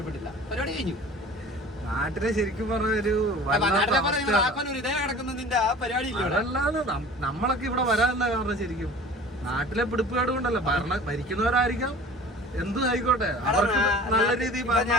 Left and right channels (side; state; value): both; normal; correlation 0.43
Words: പരിപാടി കഴിഞ്ഞു. നാട്ടിലെ ശരിക്കും പറഞ്ഞൊരു നമ്മളൊക്കെ ഇവിടെ വരാനല്ല കാരണം. ശരിക്കും നാട്ടിലെ പിടിപ്പുകാട് കൊണ്ടല്ല, ഭരിക്കുന്നവരായിരിക്കാം, എന്തും ആയിക്കോട്ടെ, നല്ല രീതിയിൽ